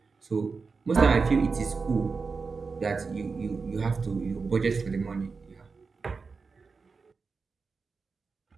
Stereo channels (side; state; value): left; quieter; 4.7 dB